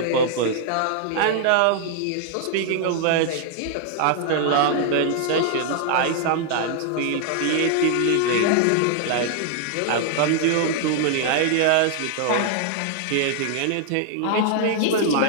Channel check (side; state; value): both; different; correlation 0.00